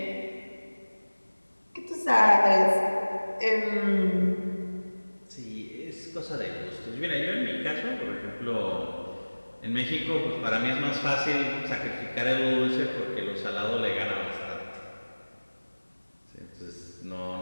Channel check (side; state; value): both; inverted; correlation -1.00